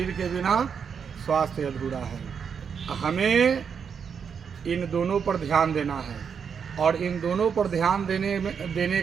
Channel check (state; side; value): quieter; left; 6.8 dB